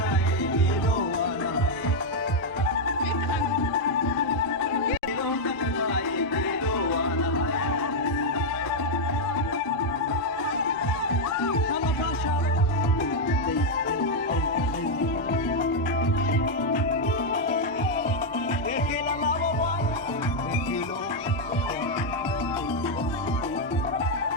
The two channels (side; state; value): both; normal; correlation 0.00